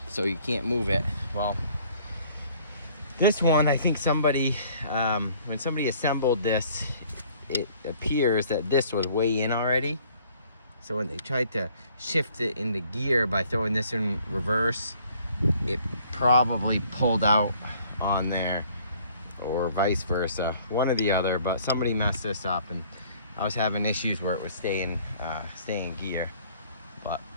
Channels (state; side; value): inverted; both; correlation -0.58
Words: so you can't move it. Well, this one, I think somebody, when somebody assembled this, it appears that this was way in already. So when they tried to shift it into gear by throwing this in reverse, it probably pulled out on there, or vice versa, one or the other. But somebody messed this up, and I was having issues where it was stay in gear. But